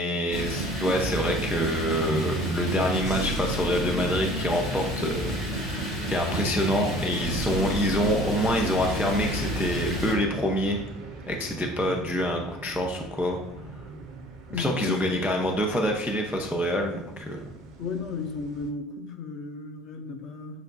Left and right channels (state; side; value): normal; both; correlation 0.51